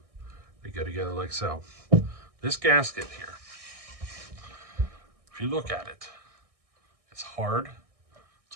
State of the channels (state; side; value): late; left; 1.6 ms